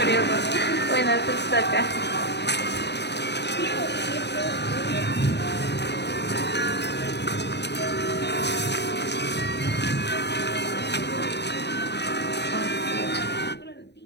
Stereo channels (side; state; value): right; late; 0.50 ms